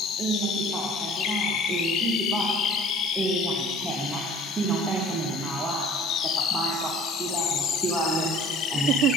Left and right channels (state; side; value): normal; both; correlation 0.49